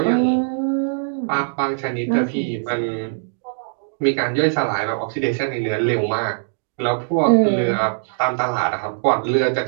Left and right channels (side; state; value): left; silent; digital silence